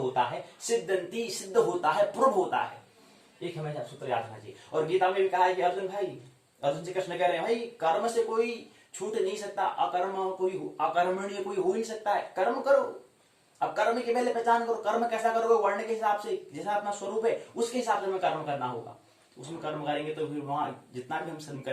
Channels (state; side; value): identical; both; correlation 1.00